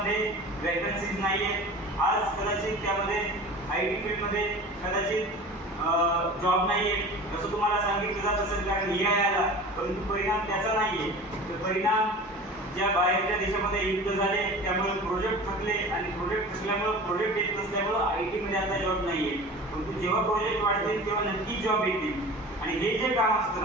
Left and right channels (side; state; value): both; normal; correlation 0.38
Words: वॅकन्सीज नाही आहेत. आज कदाचित त्यामध्ये IT फील्डमध्ये कदाचित जॉब नाही आहे असं तुम्हाला सांगितलं जात असेल, कारण AI आला. परंतु परिणाम त्याचा नाही आहे. तर परिणाम ज्या बाहेरच्या देशामध्ये युद्ध झाले त्यामुळे प्रोजेक्ट थकले आणि प्रोजेक्ट थकल्यामुळे प्रोजेक्ट येत नसल्यामुळं IT मध्ये आता जॉब नाही आहे. परंतु जेव्हा प्रोजेक्ट वाढतील तेव्हा नक्की जॉब येतील. आणि हे जे काम असतं